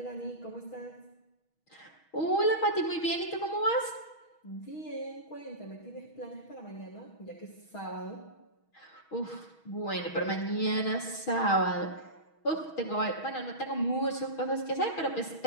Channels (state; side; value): late; right; 6.3 ms